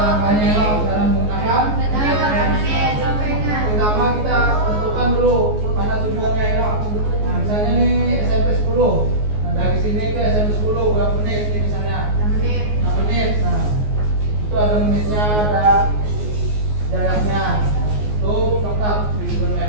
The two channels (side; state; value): left; late; 14 ms